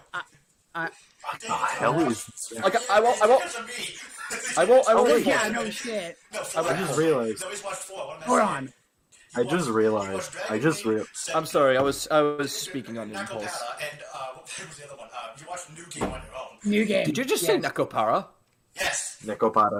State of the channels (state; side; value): identical; both; correlation 1.00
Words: the hell is? Like, I won't. Oh reinforce yeah, it. no shit. No, I just realized. No, he's watched 4. What am I Hold saying? on. I just realized. I'm sorry. I was speaking on impulse. Nakopara and what was the other one? You watched New Game on your own. New game. Did you just say Yes. Nakopara? Yes.